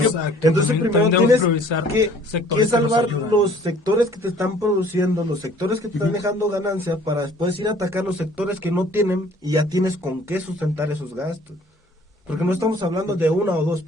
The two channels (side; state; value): both; normal; correlation 0.54